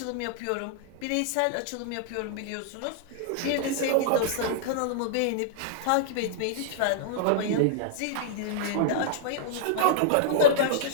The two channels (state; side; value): different; both; correlation -0.02